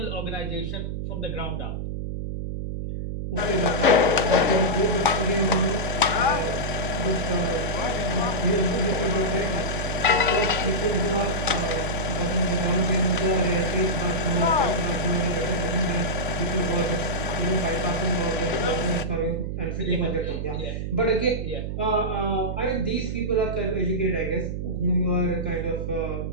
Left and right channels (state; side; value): noise; right; hum, 4 dB below the sound